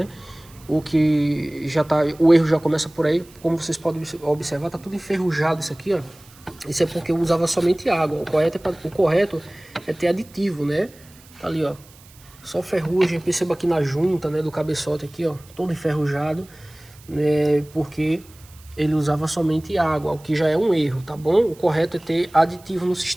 O que já tá, o erro já começa por aí, como vocês podem observar, tá tudo enferrujado isso aqui, ó. Isso é porque eu usava somente água. O correto é ter aditivo, né? Tá ali, ó. Só ferrugem. Perceba aqui na junta, né, do cabeçote aqui, ó, todo enferrujado, né? Porque ele usava somente água, o que já é um erro, tá bom? O correto é ter aditivo no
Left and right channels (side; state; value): right; noise; hiss, 25 dB below the sound